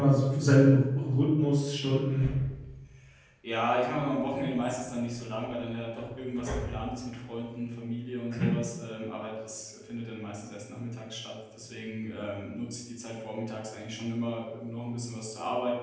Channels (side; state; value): both; identical; correlation 1.00